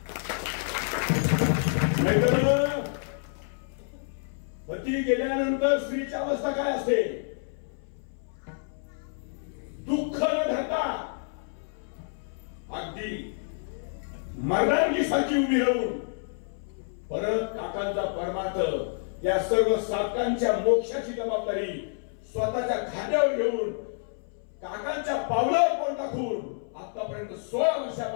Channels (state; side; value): silent; right; 59 dB below the other